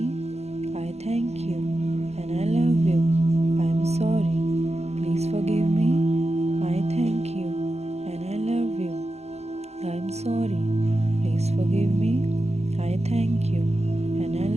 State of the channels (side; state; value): left; late; 0.31 ms